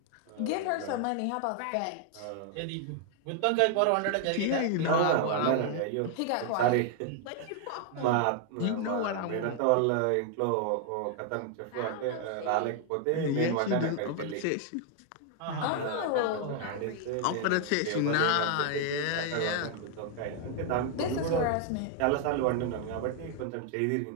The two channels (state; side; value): different; both; correlation 0.00